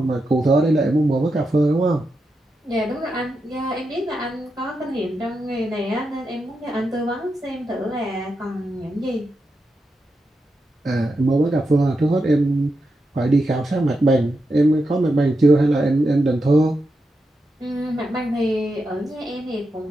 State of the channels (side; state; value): both; normal; correlation 0.87